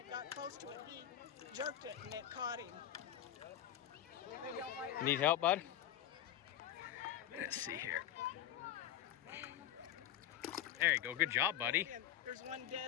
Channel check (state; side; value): quieter; right; 11.3 dB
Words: got close to it, he jerked it and it caught him. They don't like Need help, bud? Let's see here. There you go. Good job, buddy. it. There's one